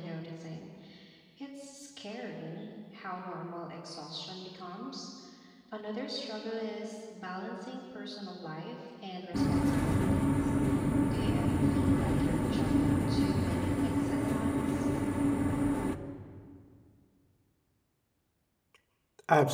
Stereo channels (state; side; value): identical; both; correlation 1.00